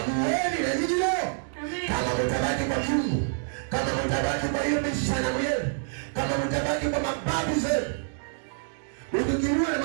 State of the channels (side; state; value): left; silent; digital silence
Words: na nyinyi leo. Kama mtabaki kwa Mungu, kama mtabaki kwa hiyo mishana yenu, kama mtabaki kwa mababu zenu, ukikiwa na